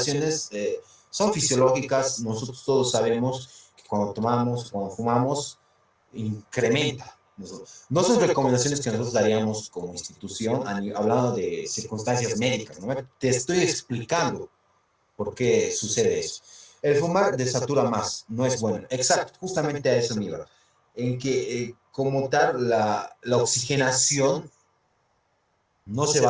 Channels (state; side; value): identical; both; correlation 1.00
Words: son fisiológicas, nosotros todos sabemos que cuando tomamos, cuando fumamos, incrementa. No son recomendaciones que nosotros daríamos como institución, hablando de circunstancias médicas, ¿no? Te estoy explicando por qué sucede eso. El fumar desatura más, no es bueno. Exacto, justamente a eso me iba. En que como tal la oxigenación no se